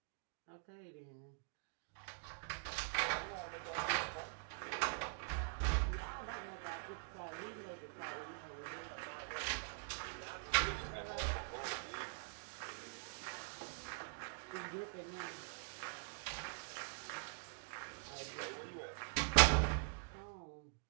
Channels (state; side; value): silent; left; digital silence